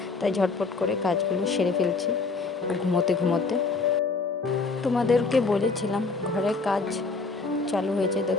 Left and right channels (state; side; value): quieter; right; 4.1 dB